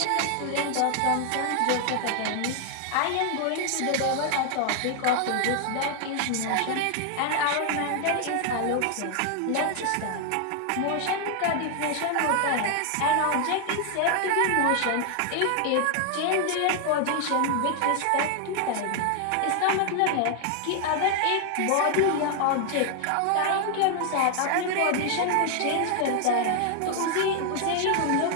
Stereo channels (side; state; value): both; different; correlation 0.00